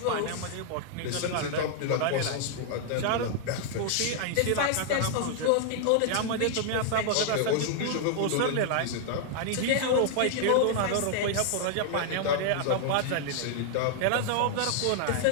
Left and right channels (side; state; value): both; different; correlation 0.00